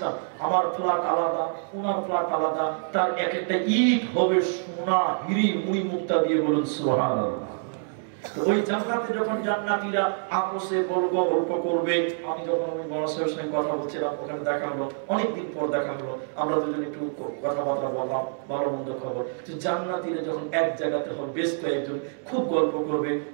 আমার ফ্ল্যাট আলাদা, ওনার ফ্ল্যাট আলাদা, তার এক একটা ইট হবে সোনা, হিরি, মুড়ি মুক্তা দিয়ে, বলুন সুবহানাল্লাহ। ওই জান্নাতে যখন জান্নাতীরা আপসে গল্প করবে, আমি যখন ওই বড় সাহেবের সঙ্গে কথা বলছিলাম, ওখানে দেখা হলো, অনেকদিন পর দেখা হলো, আমরা দুজন একটু কথাবার্তা বললাম, ভালো মন্দ খবর। তো জান্নাতীরা যখন এক জায়গাতে হবে, বেশ কয়েকজন খুব গল্প করবে,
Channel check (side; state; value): left; silent; digital silence